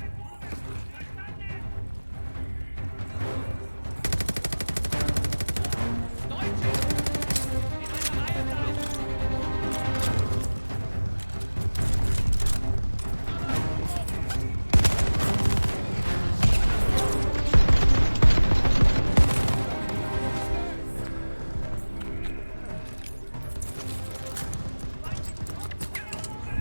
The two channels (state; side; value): inverted; both; correlation -1.00